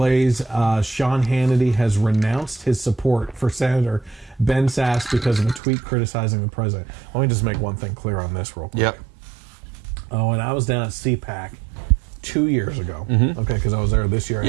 Sean Hannity has renounced his support for Senator Ben Sasse because of a tweet criticizing the president. Let me just make one thing clear on this real quick. When I was down at CPAC 2 years ago, because I was there this year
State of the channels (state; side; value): drops out; left; at 5.6 s